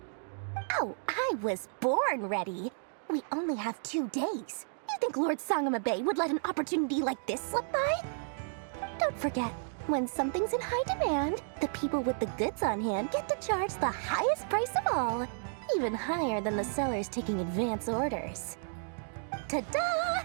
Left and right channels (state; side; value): silent; left; digital silence